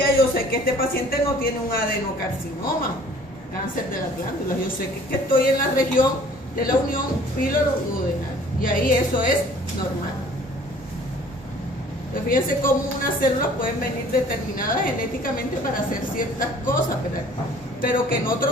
yo sé que este paciente no tiene un adenocarcinoma, cáncer de las glándulas. Yo sé que estoy en la región de la unión píloro-duodenal. Y ahí eso es normal. Entonces fíjense cómo unas células pueden venir determinadas genéticamente para hacer ciertas cosas, ¿verdad? Pero que en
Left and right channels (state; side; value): normal; both; correlation 0.52